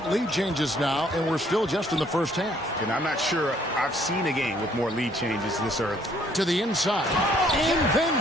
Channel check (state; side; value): normal; both; correlation 0.64